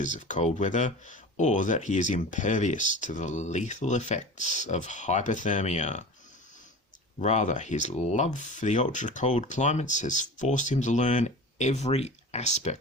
of cold weather or that he is impervious to the lethal effects of hypothermia. Rather, his love for the ultra-cold climates has forced him to learn every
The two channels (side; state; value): both; normal; correlation 0.35